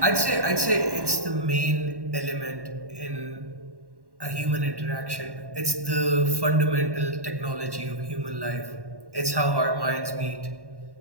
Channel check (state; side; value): late; left; 1.1 ms